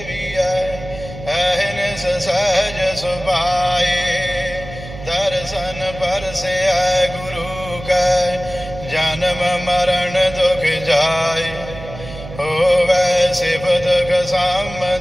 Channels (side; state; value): right; noise; hum, 13 dB below the sound